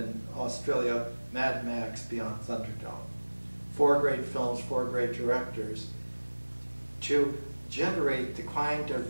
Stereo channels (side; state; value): both; inverted; correlation -1.00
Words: Australia, Mad Max Beyond Thunderdome. 4 great films, 4 great directors, to generate the kind of